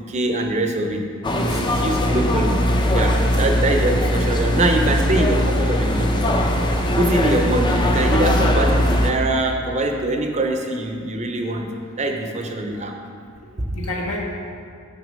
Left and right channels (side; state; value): both; normal; correlation 0.60